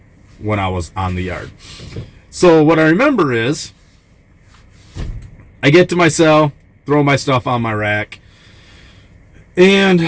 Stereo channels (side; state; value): both; identical; correlation 1.00